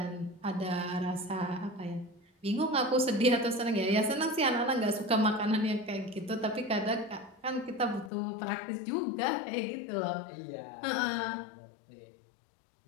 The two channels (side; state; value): right; drops out; at 8.1 s